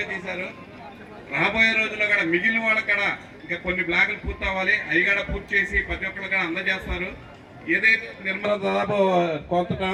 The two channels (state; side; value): identical; both; correlation 1.00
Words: చేశారు. రాబోయే రోజుల్లో కూడా మిగిలిన వాళ్ళకి కూడా ఇంకా కొన్ని బ్లాకులు పూర్తి అవ్వాలి. అవి కూడా పూర్తి చేసి ప్రతి ఒక్కరు కూడా అందజేస్తారు. ఏదైతే నిర్మాణం దాదాపు కొంత